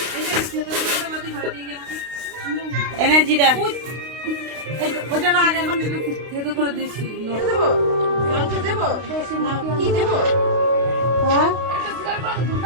এনে, জিরা ওইটা না, আগে এখন থেতো করে দিচ্ছি। দেবো মাংস, দেবো কি দেবো? হ্যাঁ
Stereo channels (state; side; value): late; left; 32 ms